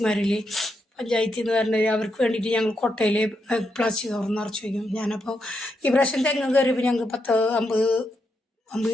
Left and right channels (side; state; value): both; normal; correlation 0.82